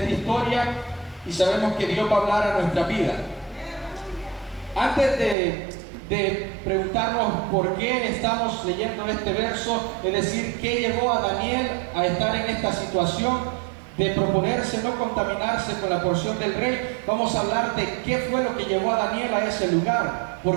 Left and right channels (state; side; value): drops out; left; at 5.4 s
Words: historia y sabemos que Dios va a hablar a nuestra vida. Antes de preguntarnos por qué estamos leyendo este verso, es decir, qué llevó a Daniel a estar en esta situación de proponerse no contaminarse con la porción del rey, vamos a hablar de qué fue lo que llevó a Daniel a ese lugar,